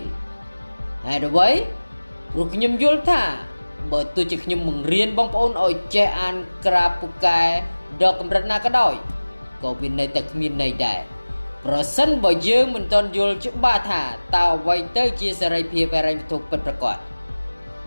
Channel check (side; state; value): both; inverted; correlation -1.00